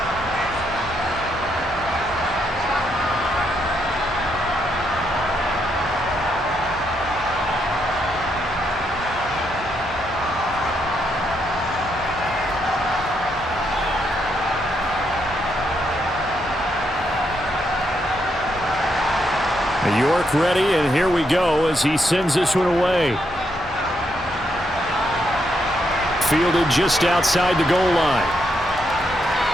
York ready, and here we go as he sends this one away. Fielded just outside the goal line.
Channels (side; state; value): both; normal; correlation 0.78